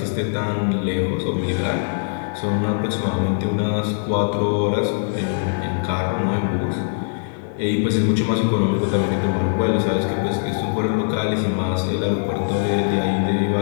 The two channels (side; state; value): right; silent; digital silence